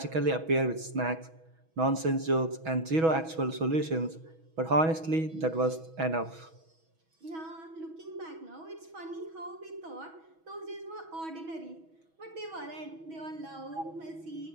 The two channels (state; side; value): late; left; 6.2 ms